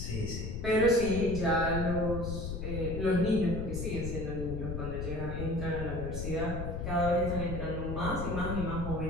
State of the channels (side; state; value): left; noise; rumble, 4 dB below the sound